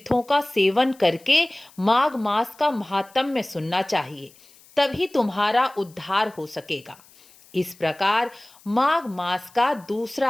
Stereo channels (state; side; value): noise; left; hiss, 26 dB below the sound